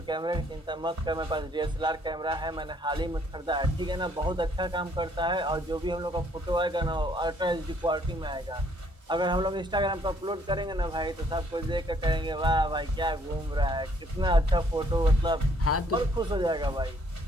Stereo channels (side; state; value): both; normal; correlation 0.65